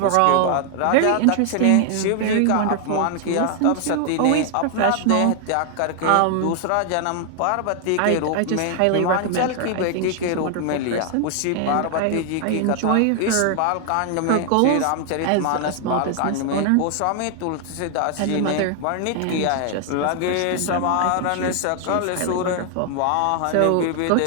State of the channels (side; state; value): both; different; correlation 0.00